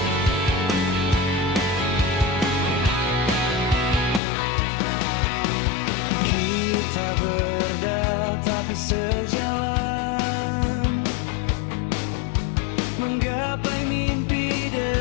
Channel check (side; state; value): right; drops out; at 4.2 s